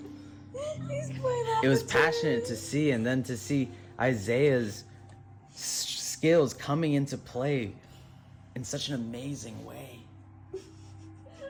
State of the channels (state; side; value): identical; both; correlation 1.00